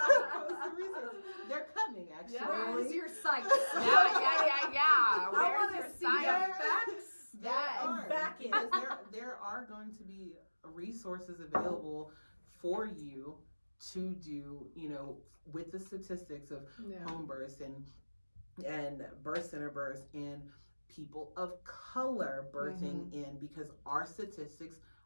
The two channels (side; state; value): both; inverted; correlation -1.00